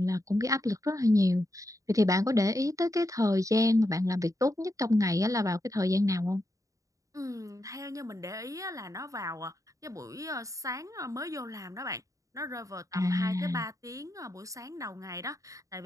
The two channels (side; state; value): left; late; 0.16 ms